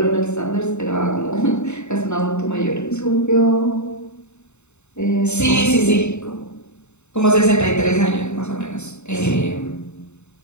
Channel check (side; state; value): right; late; 0.82 ms